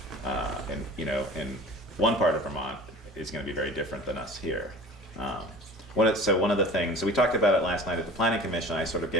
in one part of Vermont is going to be very different than us here. One of the things, so we talked about it last night at the Planning Commission. I sort of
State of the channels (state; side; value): normal; both; correlation 0.41